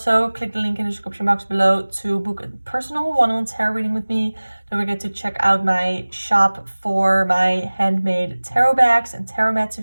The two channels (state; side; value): inverted; both; correlation -1.00